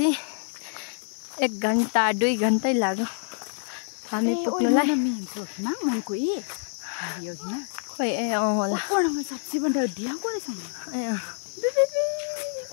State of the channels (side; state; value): right; silent; 60 dB below the other